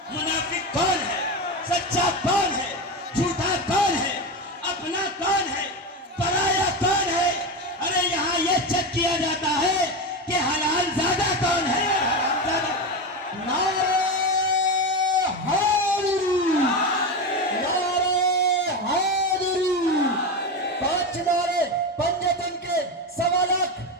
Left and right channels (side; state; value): both; normal; correlation 0.18